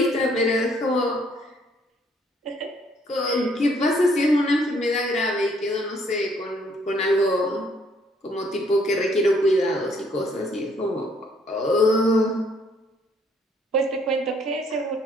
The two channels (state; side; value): normal; both; correlation 0.65